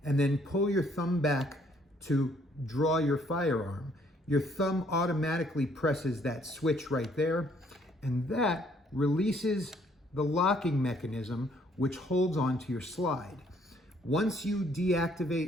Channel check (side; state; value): both; normal; correlation 0.65